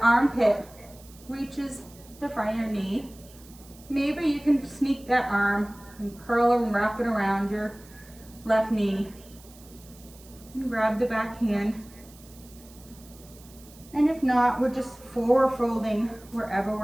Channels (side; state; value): right; noise; hiss, 23 dB below the sound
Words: armpit reaches the front of your knee, maybe you can sneak that arm and curl and wrap it around your left knee and grab the back hand. And if not, we're just forward folding wherever